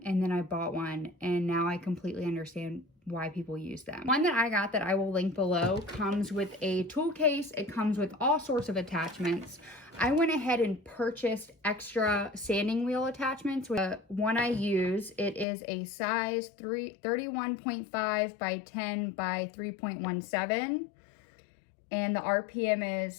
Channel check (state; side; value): drops out; right; at 15.5 s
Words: and then I bought one, and now I completely understand why people use them. One that I got that I will link below comes with a tool case. It comes with all sorts of attachments. I went ahead and purchased extra sanding wheel attachments. The one I use, it is a size 31.5 by 10 by 3.17, and the RPM